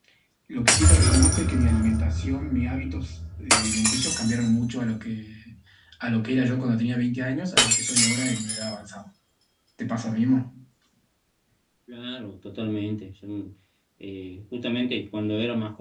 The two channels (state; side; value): identical; both; correlation 1.00